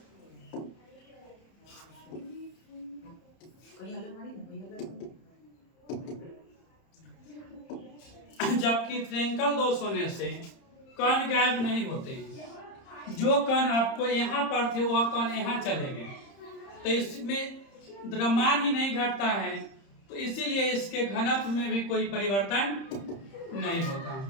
से कण गायब नहीं होते हैं। जो कण आपको यहाँ पर थे वह कण यहाँ चले गए, तो इसमें द्रव्यमान ही नहीं घटता है, तो इसीलिए इसके घनत्व में भी कोई परिवर्तन नहीं होता।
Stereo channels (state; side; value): late; right; 30 ms